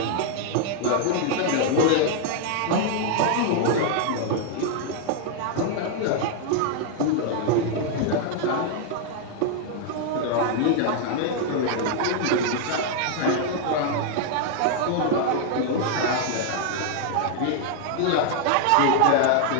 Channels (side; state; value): both; different; correlation 0.00